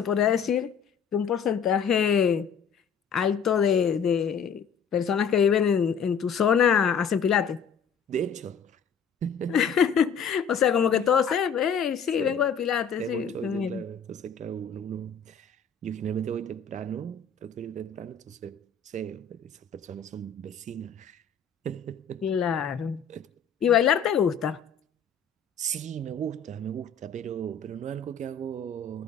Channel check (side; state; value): right; quieter; 6.2 dB